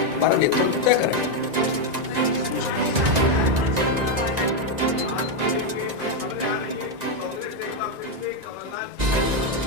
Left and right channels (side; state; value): left; late; 1.9 ms